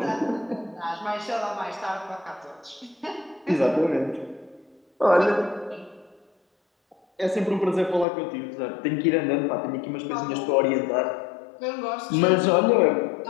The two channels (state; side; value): drops out; right; at 8.1 s